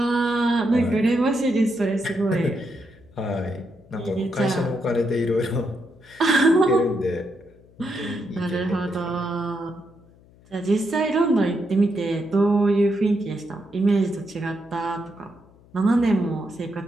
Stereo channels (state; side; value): noise; left; hum, 27 dB below the sound